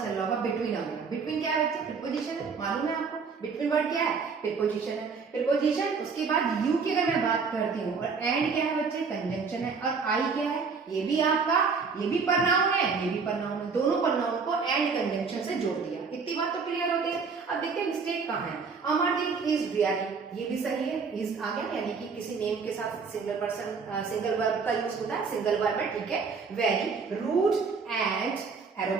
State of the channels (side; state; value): left; quieter; 5.2 dB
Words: रहा होगा बिटवीन आ गया। बिटवीन क्या है बच्चे? प्रीपोजिशन है, मालूम है आपको। बिटवीन वर्ड क्या है? प्रीपोजिशन है। प्रीपोजिशन, उसके बाद यू की अगर मैं बात करती हूँ, और एंड क्या है बच्चे? कंजंक्शन है। और आई क्या है? ये भी आपका, ये भी प्रनाउन है, ये भी प्रनाउन है। दोनों प्रनाउन को एंड कंजंक्शन से जोड़ दिया। इतनी बात तो क्लियर होती है। अब देखते हैं मिस्टेक कहाँ है। अमरदीप इज वेरी, ये भी सही है, इज आ गया, यानी कि किसी नेम के साथ सिंगल पर्सन सिंगल वर्ब का यूज होता है, सिंगल वर्ब है, ठीक है। वेरी, रूड एंड